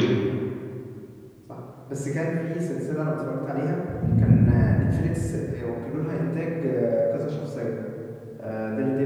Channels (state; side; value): identical; both; correlation 1.00